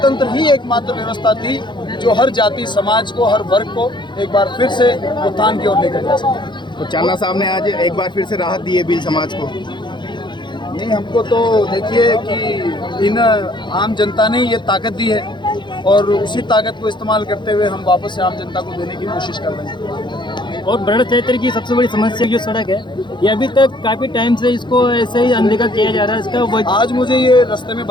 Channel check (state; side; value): late; right; 0.22 ms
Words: ही एकमात्र व्यवस्था थी जो हर जाति समाज को, हर वर्ग को एक बार फिर से उत्थान की ओर लेकर जा सके। तो चांदना साहब ने आज एक बार फिर से राहत दी है भील समाज को। नहीं, हमको तो देखिए कि इन आम जनता ने ये ताकत दी है और उसी ताकत को इस्तेमाल करते हुए हम वापस से आम जनता को देने की कोशिश कर रहे हैं। और बड़ा क्षेत्र की सबसे बड़ी समस्या जो सड़क है, ये अभी तक काफ़ी टाइम से इसको ऐसे ही अनदेखा किया जा रहा है। इसका आज मुझे ये रास्ते में